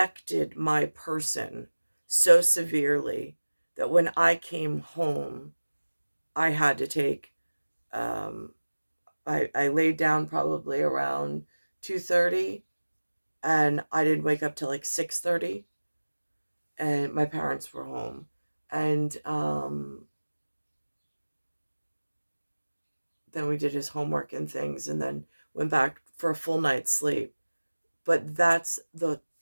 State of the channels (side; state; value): both; inverted; correlation -1.00